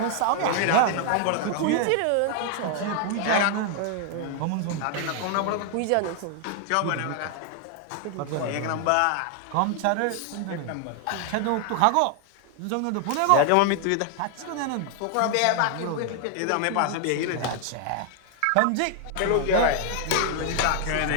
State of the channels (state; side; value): different; both; correlation 0.00